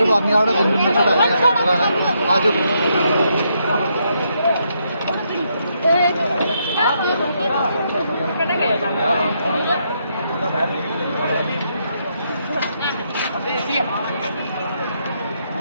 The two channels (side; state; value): both; inverted; correlation -0.77